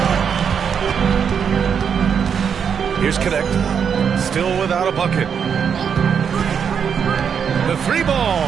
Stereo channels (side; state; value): left; quieter; 7.2 dB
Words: Here's Connect. Still without a bucket. The three